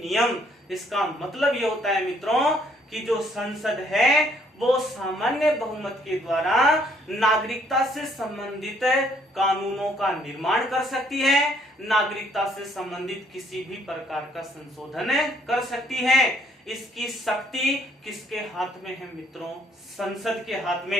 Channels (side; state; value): both; normal; correlation 0.65